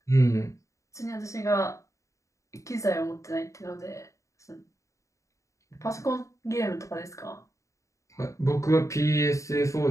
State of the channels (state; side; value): late; right; 0.15 ms